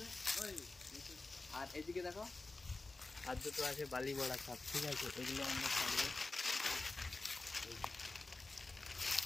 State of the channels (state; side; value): quieter; right; 3.4 dB